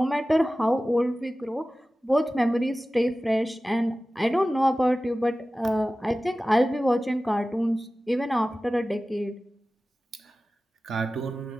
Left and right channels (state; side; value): normal; both; correlation 0.96